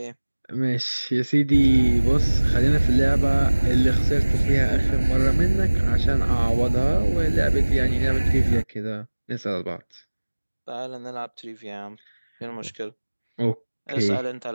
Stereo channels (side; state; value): both; inverted; correlation -1.00